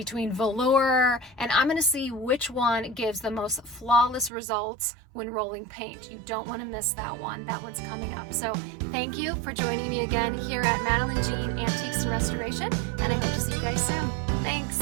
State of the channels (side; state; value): left; drops out; at 4.3 s